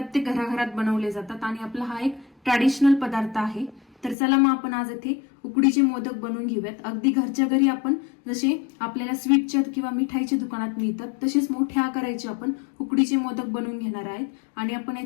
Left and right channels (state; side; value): drops out; right; at 4.2 s